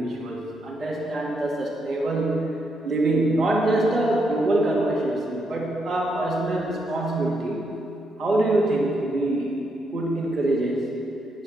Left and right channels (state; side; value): normal; both; correlation 0.79